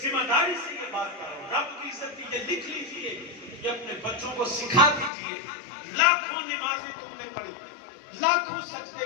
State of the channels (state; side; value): drops out; right; at 5.1 s